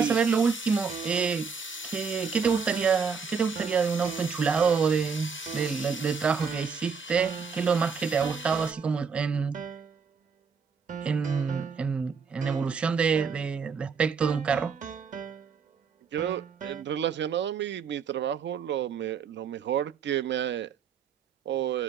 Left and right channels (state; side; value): quieter; left; 5.8 dB